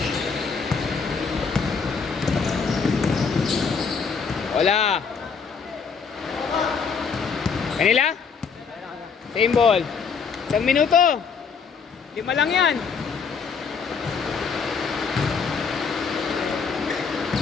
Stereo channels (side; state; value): right; quieter; 5.7 dB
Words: Wala. Kanila? Same ball. 1 minuto. 5 lang yan.